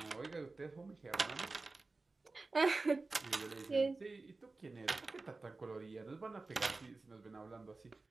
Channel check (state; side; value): quieter; left; 3.5 dB